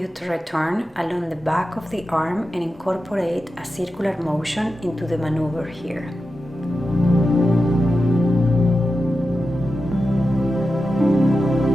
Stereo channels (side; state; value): both; normal; correlation 0.91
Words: to return along the back of the arm and incorporate a circular motion into the maneuver here.